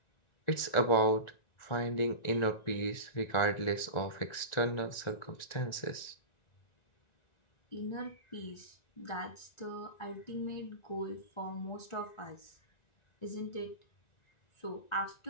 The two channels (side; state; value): right; late; 1.9 ms